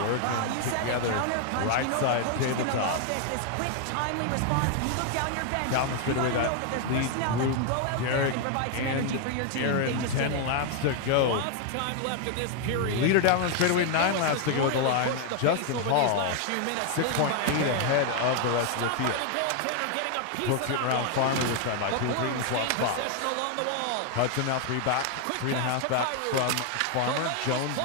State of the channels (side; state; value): both; different; correlation 0.00